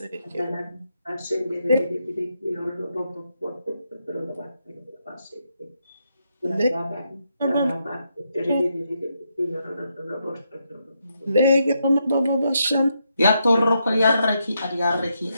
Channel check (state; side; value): inverted; both; correlation -0.80